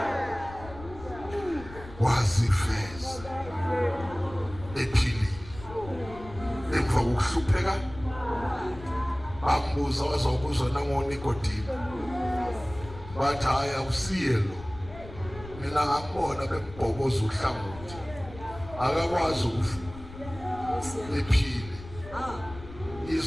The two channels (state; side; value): noise; left; rumble, 15 dB below the sound